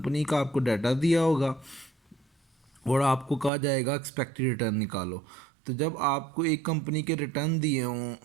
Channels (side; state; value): left; drops out; at 3.5 s